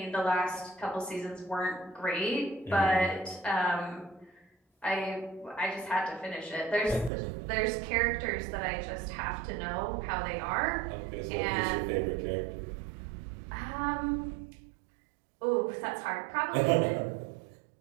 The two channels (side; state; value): left; drops out; at 7.1 s